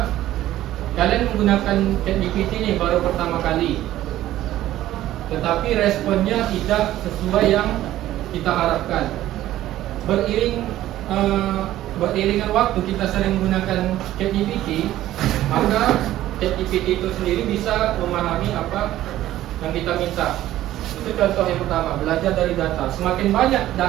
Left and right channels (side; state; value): left; quieter; 14.0 dB